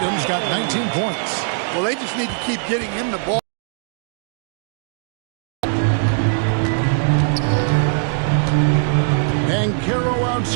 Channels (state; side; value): silent; left; digital silence